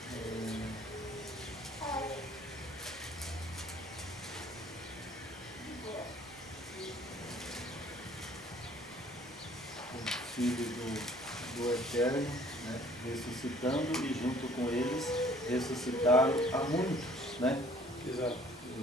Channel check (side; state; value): both; normal; correlation 0.56